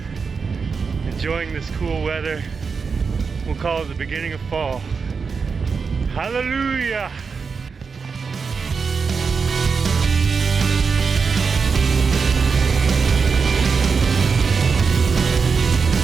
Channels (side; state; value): left; quieter; 5.3 dB